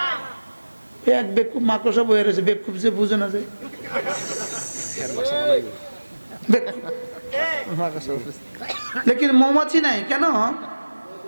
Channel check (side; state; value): both; inverted; correlation -1.00